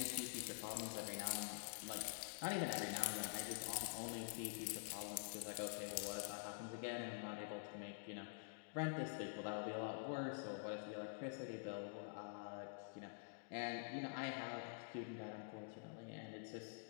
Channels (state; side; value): silent; right; digital silence